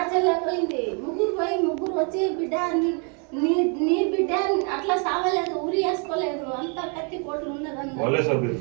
చెల్లె పోయింది, ముగ్గురు వచ్చి బిడ్డ నీ నీ బిడ్డ అట్లా సావలేదు, ఉరి వేసుకోలేదు, అంత కత్తి పోట్లు ఉన్నదన్న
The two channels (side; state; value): left; quieter; 37.6 dB